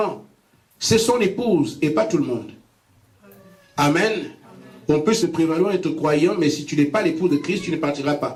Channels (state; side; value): identical; both; correlation 1.00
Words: c'est son épouse et pas tout le monde. Amen. Amen. On peut se prévaloir être croyant, mais si tu n'es pas l'épouse de Christ, tu ne partiras